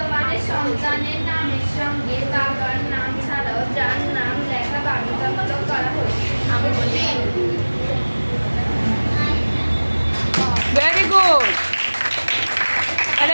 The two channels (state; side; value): inverted; both; correlation -1.00